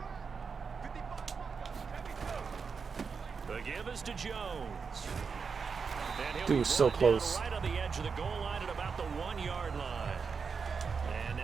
The give is to Jones. Dude, so close. Right on the edge of the goal line at about the 1-yard line. And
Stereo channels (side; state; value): left; quieter; 5.5 dB